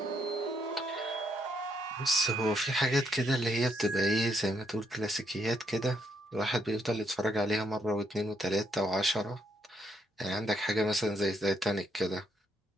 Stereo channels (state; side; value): normal; both; correlation 0.75